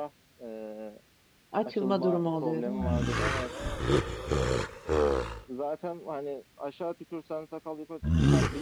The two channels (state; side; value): identical; both; correlation 1.00